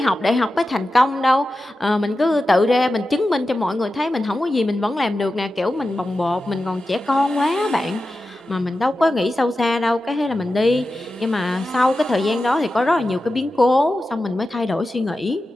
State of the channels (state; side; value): normal; both; correlation 0.92